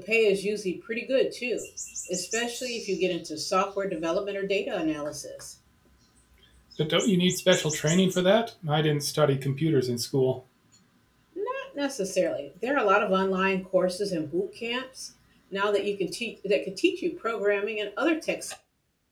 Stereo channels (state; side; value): identical; both; correlation 1.00